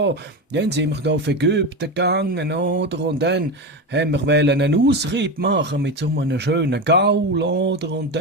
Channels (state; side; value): normal; both; correlation 0.19